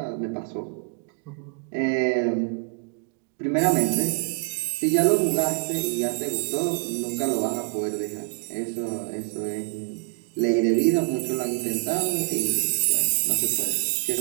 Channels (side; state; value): left; quieter; 34.6 dB